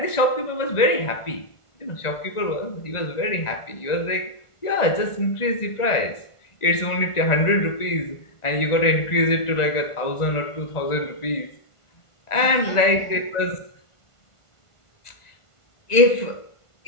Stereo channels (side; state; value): right; late; 1.5 ms